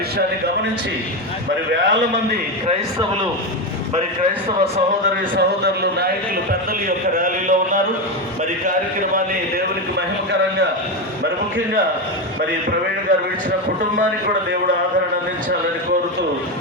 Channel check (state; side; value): normal; both; correlation 0.13